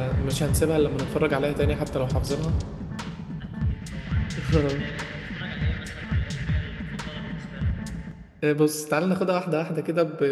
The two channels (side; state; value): both; identical; correlation 1.00